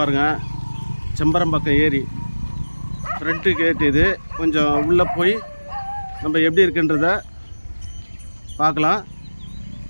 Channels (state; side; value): inverted; both; correlation -1.00